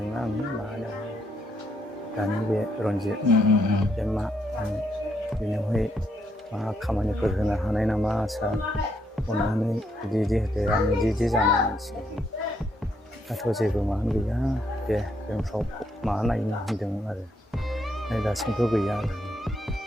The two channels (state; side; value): normal; both; correlation 0.75